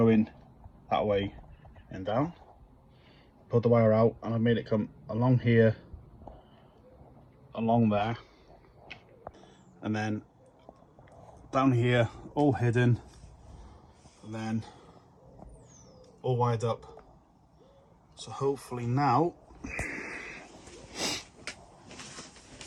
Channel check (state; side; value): identical; both; correlation 1.00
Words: that way and down, pulled the wire out, and I've made it come along here, along there, and then down here, all hidden, and then all wired up. So hopefully now,